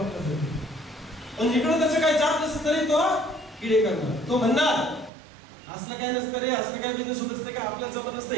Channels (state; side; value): drops out; left; at 5.1 s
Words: पण इकडं त्याचं काय जात नसतं तरी तो किडे करणार. तो म्हणणार असलं काय नसतं रे, असलं काय बिझनेस होत असतं का, आपल्या जमत नसतं,